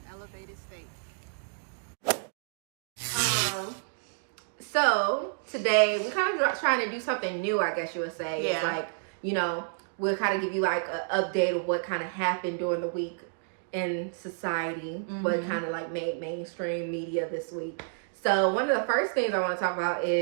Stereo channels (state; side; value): silent; left; digital silence